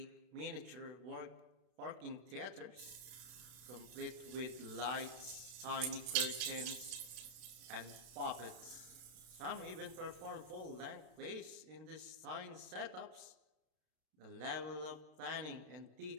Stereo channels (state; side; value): late; left; 32 ms